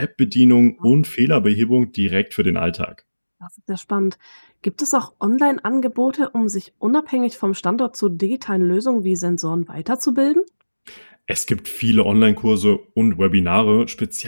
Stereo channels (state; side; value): inverted; both; correlation -1.00